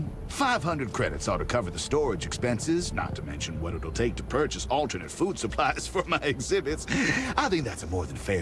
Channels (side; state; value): both; identical; correlation 1.00